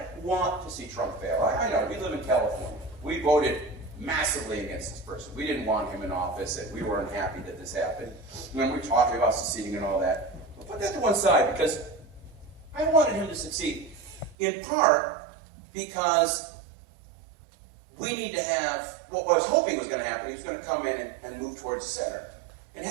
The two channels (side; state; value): left; drops out; at 14.4 s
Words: want to see Trump fail. I know, we live in California. We voted massively against this person. We didn't want him in office, and we were unhappy that this happened. When we're talking about seceding and all that, we'll put that to one side, because I wanted him to succeed. In part, because we need to have, what I was hoping was going to happen, he was going to come in and move towards the center, and